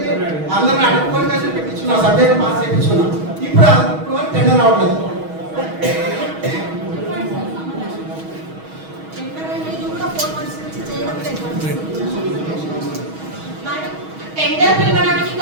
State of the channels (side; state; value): left; late; 6.3 ms